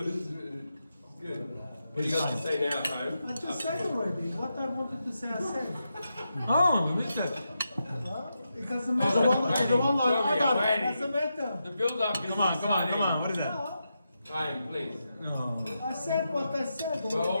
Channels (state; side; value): inverted; both; correlation -0.87